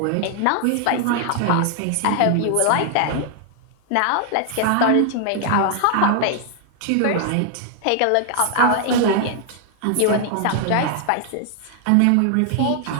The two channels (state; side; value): different; both; correlation 0.00